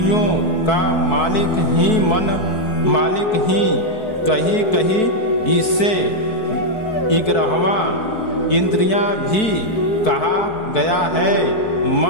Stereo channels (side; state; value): right; late; 4.6 ms